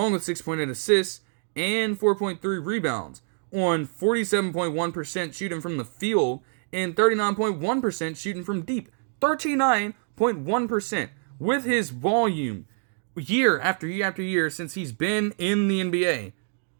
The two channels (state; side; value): silent; left; 59 dB below the other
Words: with 6.8 assists and 4.3 rebounds, on 47.1% shooting from the field and 39.1% shooting from deep. 39.1% with his volume year after year after year since he's been in the NBA,